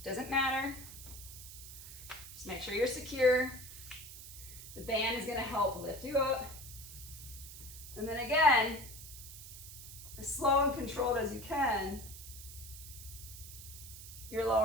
doesn't matter. Just make sure you're secure. The band is gonna help lift you up. And then again, as slow and controlled as you can, you're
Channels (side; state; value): right; noise; hiss, 13 dB below the sound